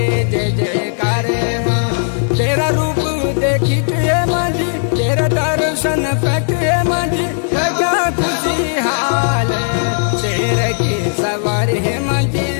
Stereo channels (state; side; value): silent; right; digital silence